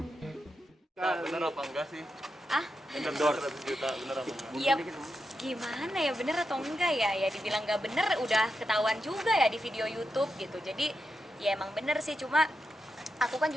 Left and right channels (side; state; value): both; normal; correlation 0.87